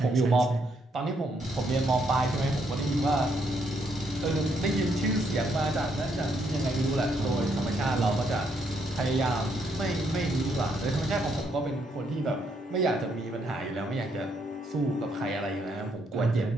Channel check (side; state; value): both; normal; correlation 0.74